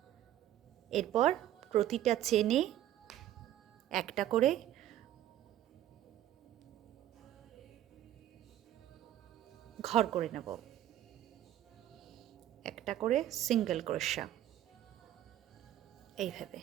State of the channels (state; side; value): quieter; left; 12.5 dB